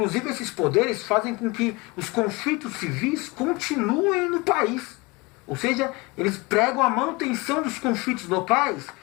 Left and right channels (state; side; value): quieter; right; 25.0 dB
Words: esses poderes fazem com que os conflitos civis continuem no país. Ou seja, eles pregam a manutenção dos conflitos locais,